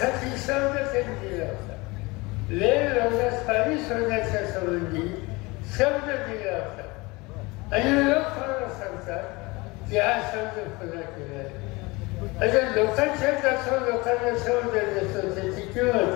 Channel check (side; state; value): right; quieter; 24.1 dB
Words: शब्द त्यांनी दिला होता. लेन रोगास पाणी सोडण्याच्या संबंधी शब्द दिला होता. आणि लोक मला सांगतात की हा शब्द पुन्हा केला आहे. आता लोकांच्या जास्त लोकांना शब्द देतो, त्याची